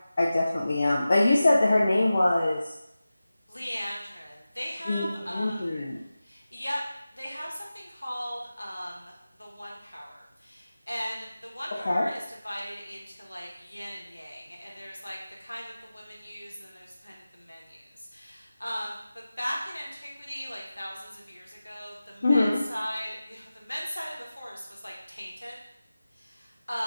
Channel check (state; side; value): inverted; both; correlation -0.95